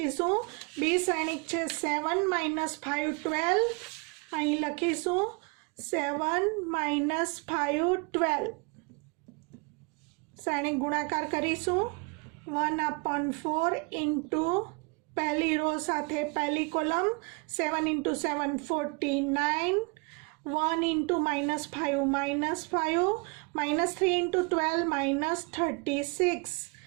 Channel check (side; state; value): left; quieter; 30.9 dB